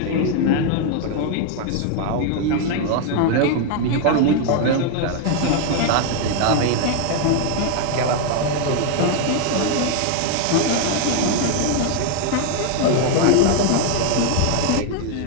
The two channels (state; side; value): different; both; correlation 0.00